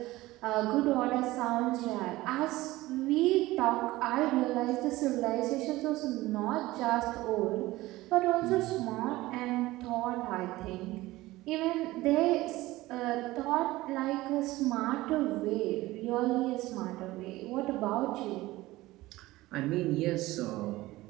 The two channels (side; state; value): left; quieter; 18.3 dB